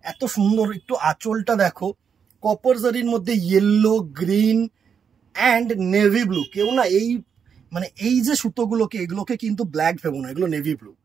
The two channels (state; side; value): quieter; left; 7.0 dB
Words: এত সুন্দর, একটু আঁচলটা দেখো, কপার জারির মধ্যে yellow, green and navy blue. কেউ না এই মানে এই যে সুতোগুলোকে, এগুলোকে কিন্তু ব্ল্যাক ভেবো না, এগুলো নেভি ব্লু,